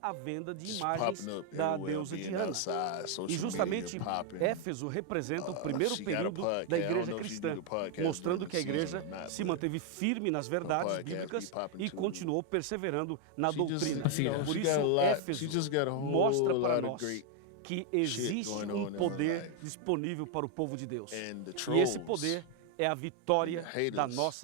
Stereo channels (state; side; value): different; both; correlation 0.01